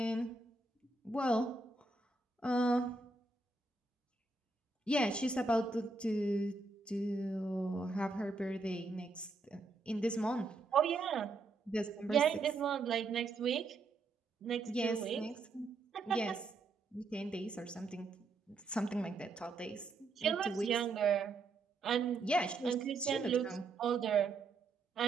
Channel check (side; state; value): left; quieter; 3.6 dB